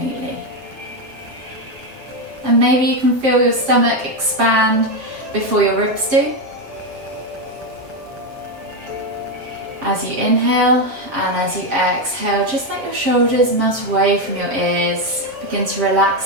And maybe you can feel your stomach expand before your ribs do. As you inhale and as you exhale, just let your shoulders melt away from your ears. Begin to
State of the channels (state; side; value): late; left; 7.5 ms